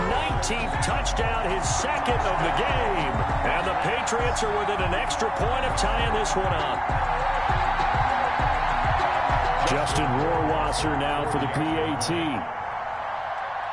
19th touchdown, his second of the game. And the Patriots are within an extra point of tying this one up. Justin Rohrwasser now for the PAT.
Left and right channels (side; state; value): both; identical; correlation 1.00